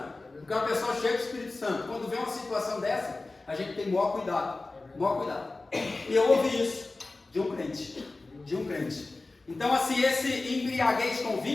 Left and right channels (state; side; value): quieter; right; 3.3 dB